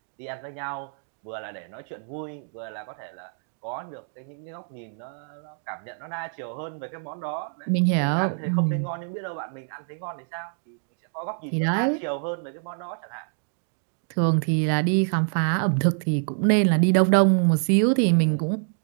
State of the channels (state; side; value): silent; left; digital silence